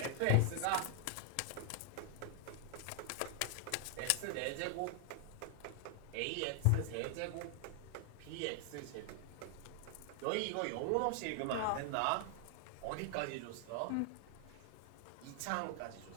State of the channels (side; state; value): both; different; correlation 0.00